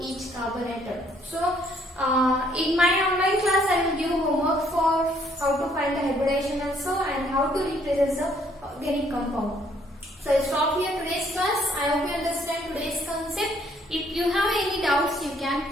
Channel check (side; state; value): both; normal; correlation 0.65